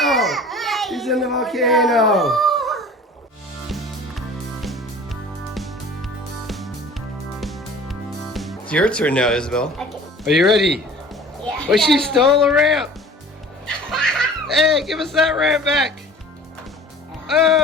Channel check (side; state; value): both; normal; correlation 0.45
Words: He's in the volcano. It's your turn now, Isabel. Okay. Are you ready? Yeah. Oh, she stole a ramp. Hey, give us that ramp back.